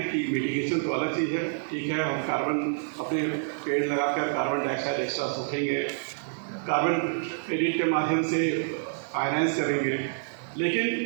कि मिटिगेशन तो अलग चीज़ है, ठीक है, हम कार्बन अपने पेड़ लगाकर कार्बन डाइऑक्साइड एक्स्ट्रा सूखेंगे, कार्बन क्रेडिट के माध्यम से फाइनेंस करेंगे, लेकिन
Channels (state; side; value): silent; left; digital silence